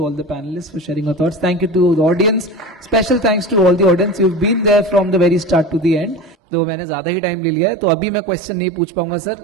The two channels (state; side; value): drops out; left; at 6.4 s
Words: all the panelist for sharing your thoughts, thank you to the audience, special thanks to all the audience, you have been there from the very start to the end. तो मैंने ज्यादा ही time ले लिया है, तो अभी मैं question नहीं पूछ पाऊंगा